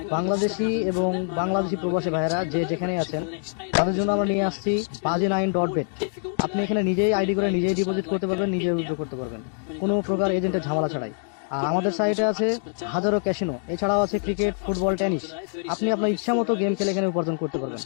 বাংলাদেশি এবং বাংলাদেশি প্রবাসী ভাইয়েরা যে যেখানে আছেন তাদের জন্য আমরা নিয়ে আসছি baji9.bet। আপনি এখানে নিজেই আইডি করে নিজেই ডিপোজিট করতে পারবেন, নিজেই উইথড্র করতে পারবেন, কোনো প্রকার এজেন্টের ঝামেলা ছাড়াই। আর আমাদের সাইটে আছে হাজারো ক্যাসিনো, এছাড়াও আছে ক্রিকেট, ফুটবল, টেনিস। আপনি আপনার ইচ্ছা মতো গেম খেলে এখানে উপার্জন করতে পারবেন।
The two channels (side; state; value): right; silent; 58 dB below the other